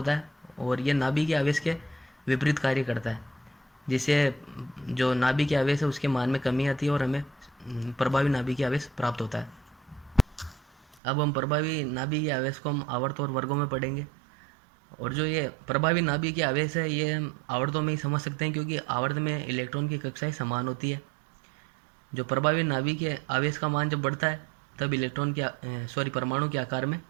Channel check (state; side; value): drops out; left; at 11.0 s